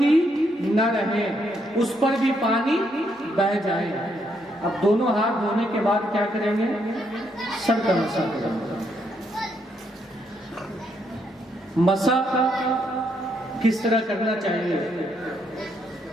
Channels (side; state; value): both; normal; correlation 0.75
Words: نہ رہے، اس پر بھی پانی بہہ جائے۔ اب دونوں ہاتھ دھونے کے بعد کیا کریں گے؟ سر کا مسح کریں گے۔ مسح کس طرح کرنا چاہیے؟